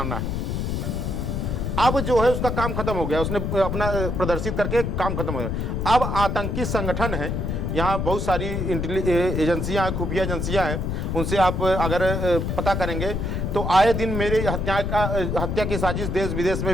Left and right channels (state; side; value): noise; left; rumble, 1 dB below the sound